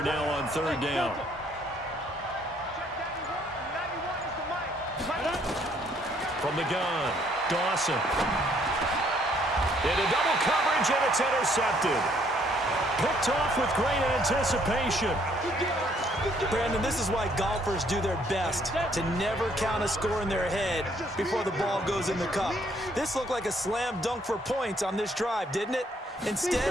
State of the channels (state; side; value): normal; both; correlation 0.66